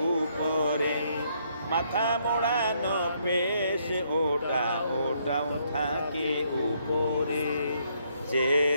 উপরে। মাথা মোড়ানো পেশ ওটাও থাকে উপরে।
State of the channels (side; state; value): both; inverted; correlation -0.71